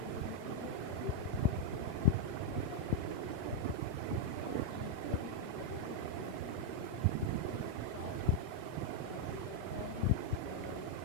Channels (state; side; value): different; both; correlation 0.00